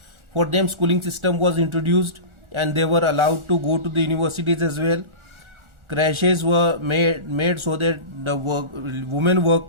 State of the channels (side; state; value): left; late; 1.4 ms